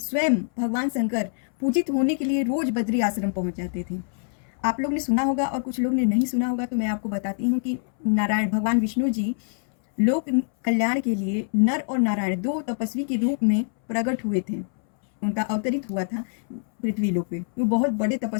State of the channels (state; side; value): silent; right; 62 dB below the other